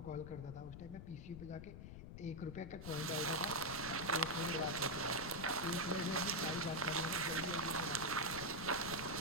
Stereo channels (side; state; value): left; noise; rumble, 11 dB below the sound